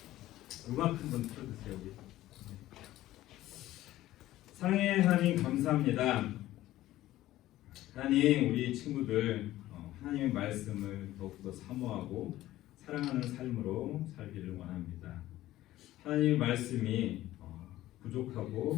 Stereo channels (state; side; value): quieter; right; 15.2 dB